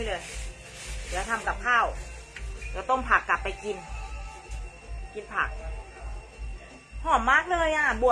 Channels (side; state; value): both; identical; correlation 1.00